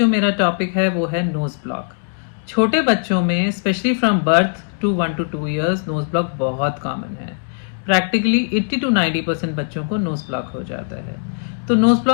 मेरा टॉपिक है वो है नोज़ ब्लॉक। छोटे बच्चों में specially from birth to 1 to 2 years nose block बहुत कॉमन है। प्रैक्टिकली 80 to 90% बच्चों को नोज़ ब्लॉक हो जाता है। तो नोज़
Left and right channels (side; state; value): right; silent; digital silence